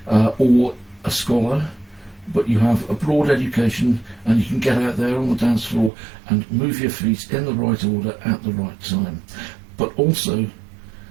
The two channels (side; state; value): left; drops out; at 5.9 s